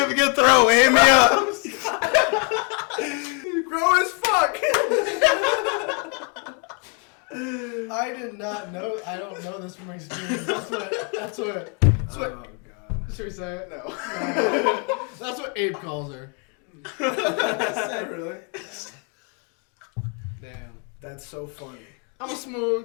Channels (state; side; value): quieter; right; 37.6 dB